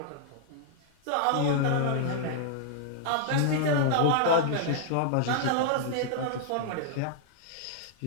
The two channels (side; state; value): both; different; correlation -0.01